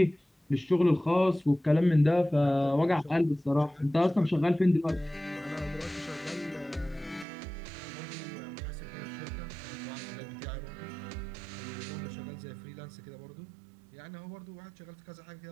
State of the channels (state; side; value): drops out; left; at 7.2 s